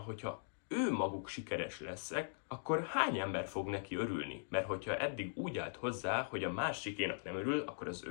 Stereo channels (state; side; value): silent; right; digital silence